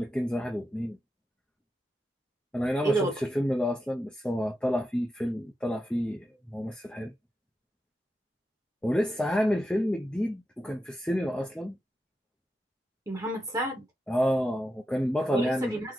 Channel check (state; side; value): normal; both; correlation 0.88